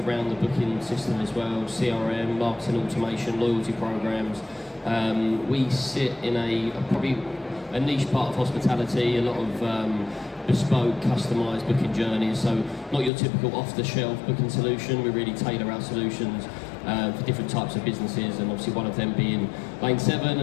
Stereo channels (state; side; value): drops out; right; at 13.1 s